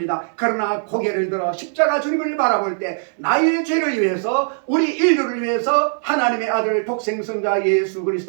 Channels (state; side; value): silent; left; 66 dB below the other